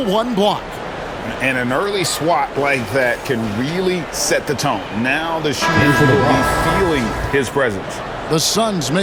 1 block. And an early swat like that can really set the tone. Now the shooters will be feeling his presence. The Suns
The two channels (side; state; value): both; identical; correlation 1.00